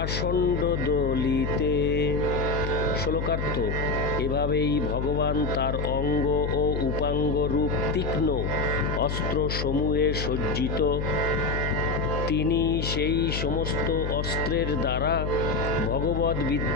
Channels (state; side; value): noise; left; hum, 2 dB below the sound